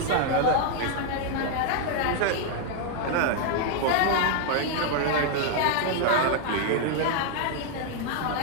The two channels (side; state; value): both; different; correlation 0.00